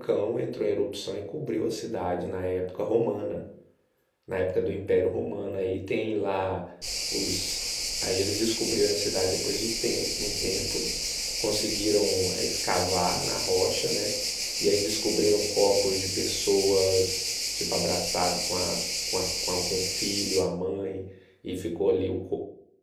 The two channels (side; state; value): both; identical; correlation 1.00